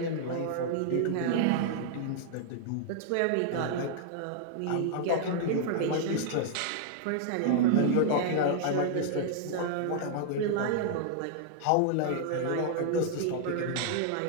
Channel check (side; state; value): both; different; correlation -0.01